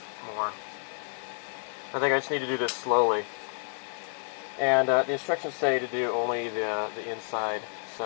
more. I think I just need to do this slowly. And the instructions say to do only the inside,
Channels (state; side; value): silent; right; 58 dB below the other